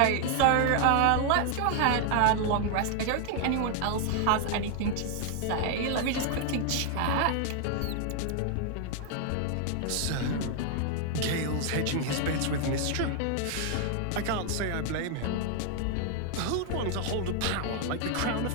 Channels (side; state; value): both; different; correlation 0.00